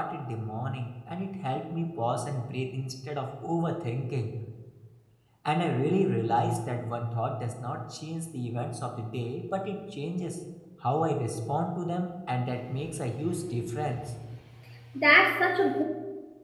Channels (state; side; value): identical; both; correlation 1.00